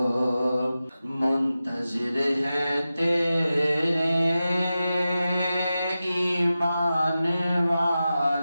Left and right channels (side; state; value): both; inverted; correlation -0.93